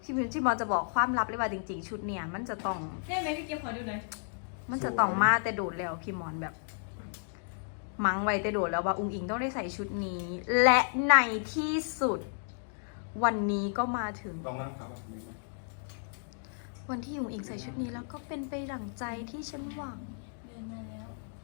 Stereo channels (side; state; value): right; silent; digital silence